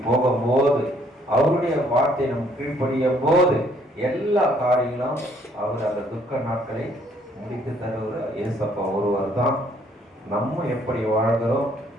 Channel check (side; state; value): both; normal; correlation 0.64